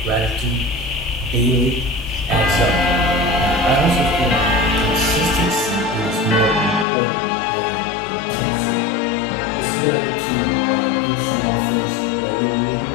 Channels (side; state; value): right; drops out; at 6.9 s